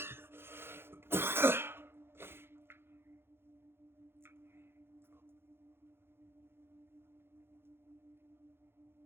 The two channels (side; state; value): left; late; 0.11 ms